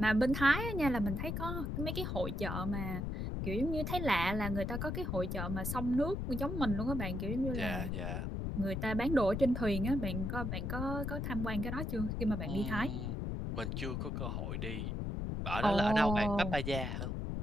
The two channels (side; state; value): left; noise; rumble, 2 dB below the sound